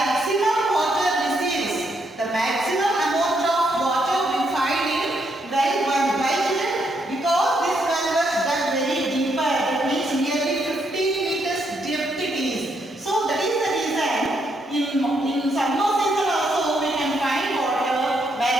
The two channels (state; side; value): normal; both; correlation 0.76